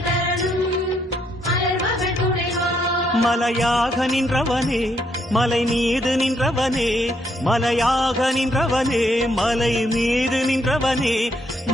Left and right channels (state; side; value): normal; both; correlation 0.74